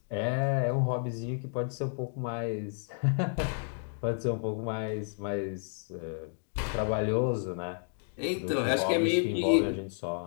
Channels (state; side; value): silent; right; digital silence